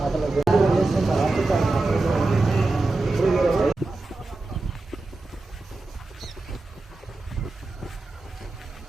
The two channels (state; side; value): quieter; left; 3.2 dB